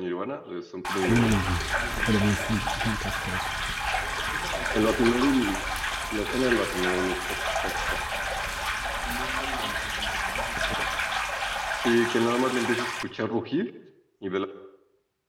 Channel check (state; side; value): identical; both; correlation 1.00